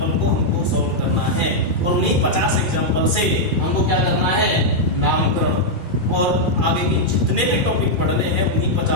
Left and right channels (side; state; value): left; late; 2.4 ms